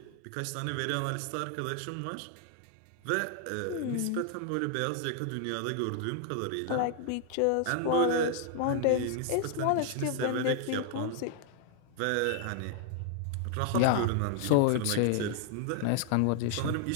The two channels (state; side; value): different; both; correlation 0.00